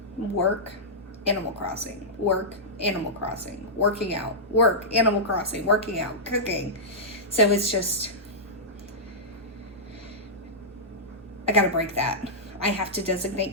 work, Animal Crossing, work, Animal Crossing, working out, work, Animal Crossing, working out, cooking. So it's just, I gotta break that. I have to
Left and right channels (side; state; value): both; normal; correlation -0.13